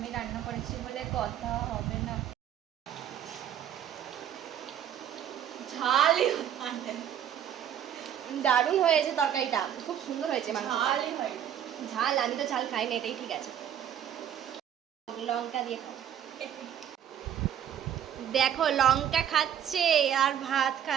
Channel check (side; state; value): left; quieter; 9.8 dB